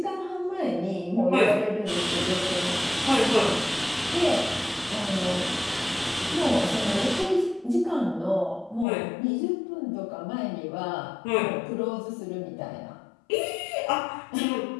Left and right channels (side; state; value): right; drops out; at 8.8 s